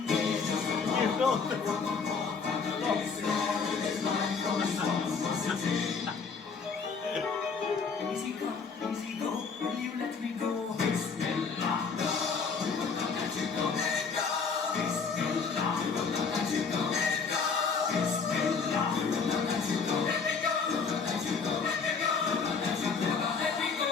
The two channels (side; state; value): right; quieter; 5.3 dB